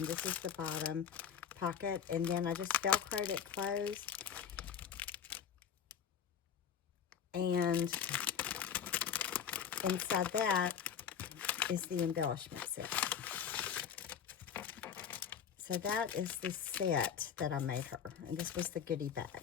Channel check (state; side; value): quieter; right; 7.9 dB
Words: this is the bottom pocket. And then I just Velcroed it closed. And inside that is the embellishment set. So that is the set that I made her, and this was the goodie bag.